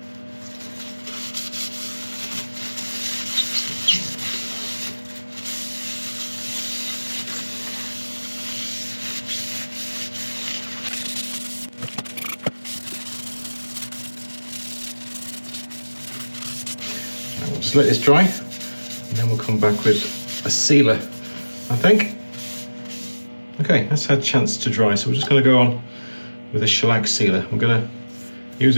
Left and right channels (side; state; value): both; inverted; correlation -1.00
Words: We'll just let this dry, and then we'll come back with a sealer, I think. Okay, that's had a chance to dry, so we're just going to go on with a shellac sealer. I'm going to use